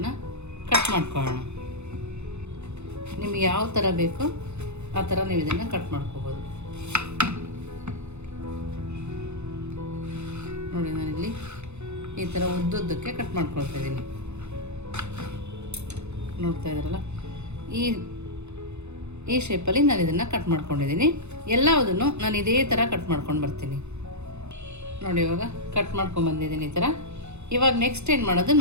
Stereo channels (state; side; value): late; left; 0.81 ms